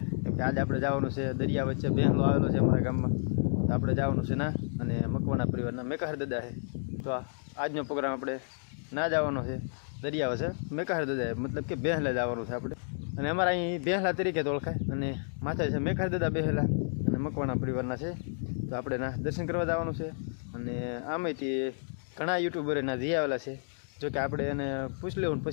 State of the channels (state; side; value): silent; right; digital silence